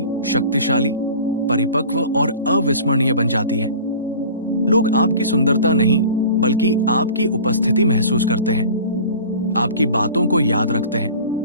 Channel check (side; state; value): both; inverted; correlation -0.41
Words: शक्तिशाली, परिपक्व और अविस्मरणीय बन जाती है। लोग आपकी सुंदरता नहीं बल्कि आपकी उपस्थिति महसूस करते हैं, आपकी बातों को याद रखते हैं